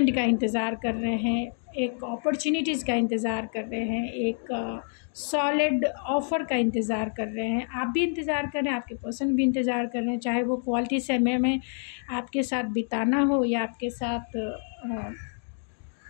का इंतज़ार कर रहे हैं, एक अपॉर्चुनिटीज़ का इंतज़ार कर रहे हैं, एक सॉलिड ऑफ़र का इंतज़ार कर रहे हैं। आप भी इंतज़ार कर रहे हैं, आपके पर्सन भी इंतज़ार कर रहे हैं, चाहे वो क्वालिटी समय में आपके साथ बिताना हो या आपके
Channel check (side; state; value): right; silent; 60 dB below the other